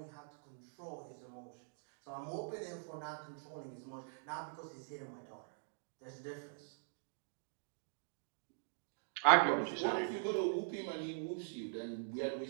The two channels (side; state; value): left; silent; digital silence